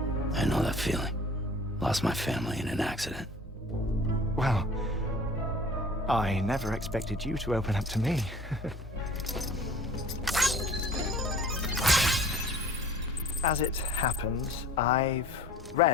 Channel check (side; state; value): both; normal; correlation 0.47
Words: I know that feeling. Lost my family in an accident. Well, I never expected you to open up to me. As it happens, I've